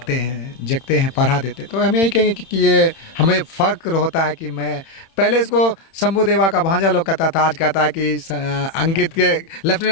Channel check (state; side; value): late; right; 31 ms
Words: हैं, पढ़ा देते। तो हम यही कहेंगे कि ये हमें फ़ख्र होता है कि मैं पहले इसको शंभू देवा का भांजा लोग कहता था, आज कहता है कि अंकित के